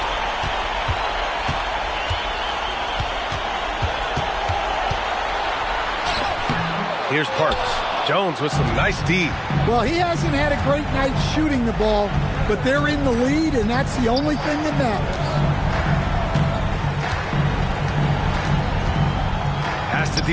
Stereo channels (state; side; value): identical; both; correlation 1.00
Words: Here's Parks. Jones with some nice D. Well, he hasn't had a great night shooting the ball, but they're in the lead, and that's the only thing that matters. Pass to